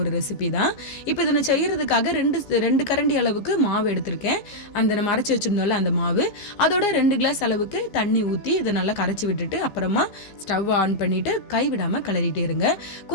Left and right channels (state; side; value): late; right; 15 ms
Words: ரெசிபி தான். இப்போ இதை நான் செய்கிறதுக்காக 2 கரண்டி அளவுக்கு மாவு எடுத்திருக்கேன். நம்ம அரைச்சி வச்சுருந்தோம்ல அந்த மாவு, அதோட 2 கிளாஸ் அளவுக்கு தண்ணி ஊற்றி இதை நல்லா கரைச்சி விட்டுட்டு அப்புறமா ஸ்டவ் ஆன் பண்ணிவிட்டு கைவிடாமல் கிளறிட்டே இருங்க.